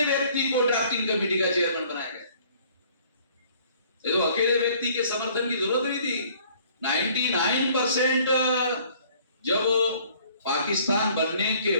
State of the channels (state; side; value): inverted; both; correlation -0.57